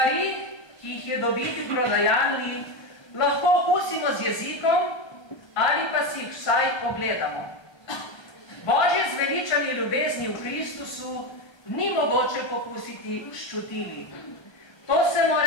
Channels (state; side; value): late; right; 1.3 ms